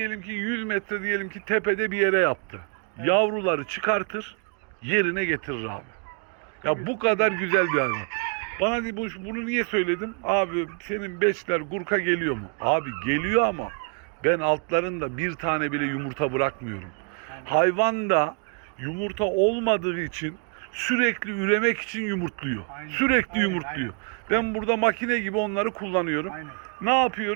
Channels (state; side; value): quieter; left; 39.6 dB